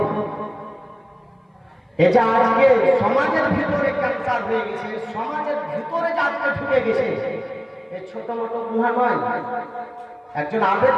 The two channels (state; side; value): identical; both; correlation 1.00